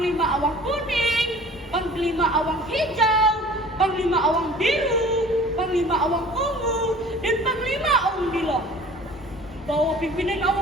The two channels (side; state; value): both; normal; correlation 0.46